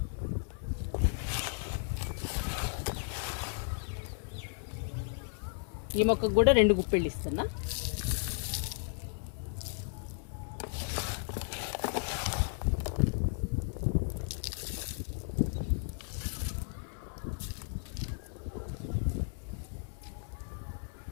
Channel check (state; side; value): silent; right; 55 dB below the other